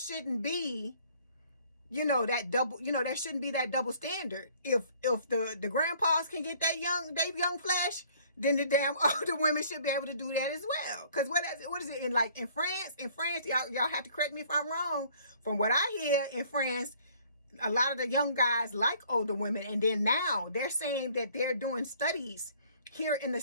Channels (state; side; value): inverted; both; correlation -0.57